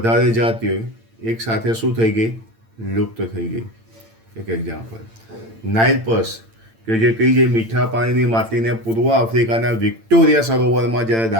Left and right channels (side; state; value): left; late; 8.9 ms